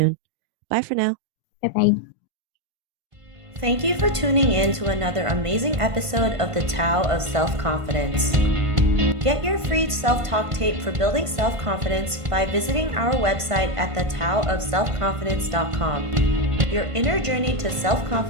Bye for now. Bye-bye. Thank you for tuning in to another amazing episode of the Tao of Self-Confidence. Get your free self-talk tape for building self-confidence by visiting our website at thetaoofselfconfidence.com. Your inner journey to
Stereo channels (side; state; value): left; late; 1.5 ms